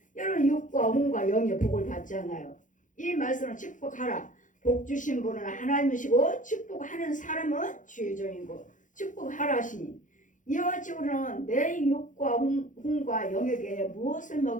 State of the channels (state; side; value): late; right; 0.37 ms